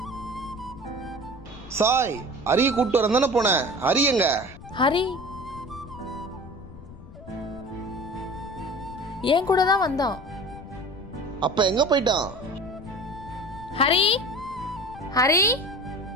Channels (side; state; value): left; noise; rumble, 16 dB below the sound